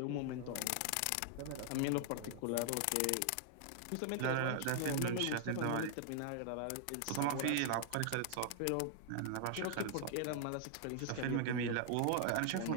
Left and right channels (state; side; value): different; both; correlation 0.00